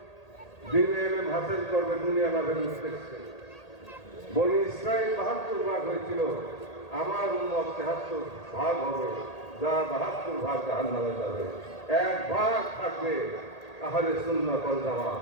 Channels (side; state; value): right; late; 1.8 ms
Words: দিনে এলেম হাসিল করবে দুনিয়া লাভের উদ্দেশ্যে। বনি ইসরাইল ৭২ ভাগ হয়েছিল, আমার উম্মত ৭৩ ভাগ হবে, যা ৭২ ভাগ জাহান্নামে যাবে। ১ ভাগ থাকবে আহলে সুন্নাত ওয়াল জামাত।